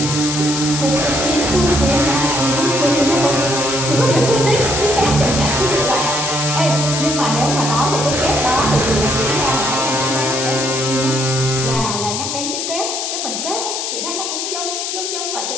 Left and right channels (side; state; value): left; noise; hiss, 3 dB below the sound